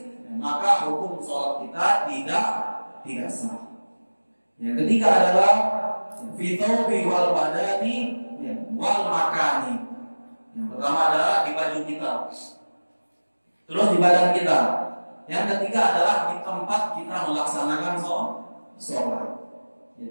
maka hukum sholat kita tidak sah. Yang ketiga adalah fitobi wal badani wal makani. Yang pertama adalah di baju kita, terus di badan kita. Yang ketiga adalah di tempat kita melaksanakan sholat.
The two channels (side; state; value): both; inverted; correlation -1.00